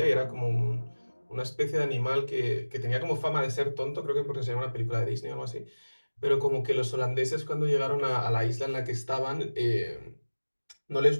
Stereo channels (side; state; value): both; inverted; correlation -1.00